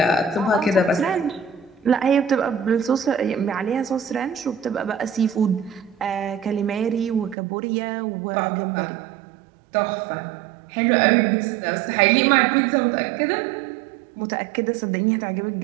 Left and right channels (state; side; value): drops out; left; at 7.4 s